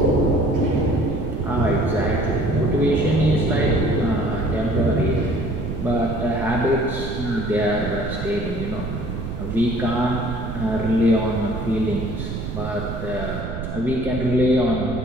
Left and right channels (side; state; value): right; noise; rumble, 6 dB below the sound